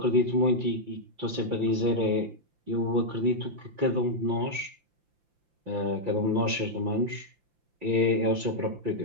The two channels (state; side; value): late; left; 5.8 ms